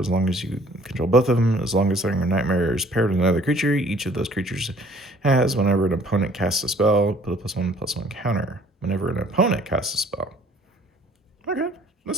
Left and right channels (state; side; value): normal; both; correlation 0.56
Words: long as you control both of them. As long as Thundering Nightmare is paired with another creature, each of those creatures has, whenever an opponent casts a spell, put a +1/+1 counter. Whenever an opponent casts a spell. Okay,